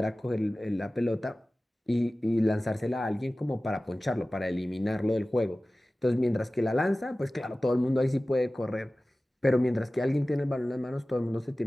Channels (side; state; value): both; normal; correlation 0.97